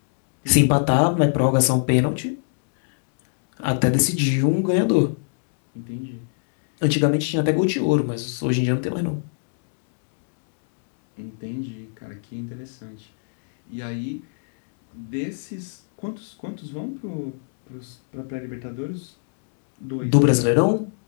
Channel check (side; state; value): right; silent; digital silence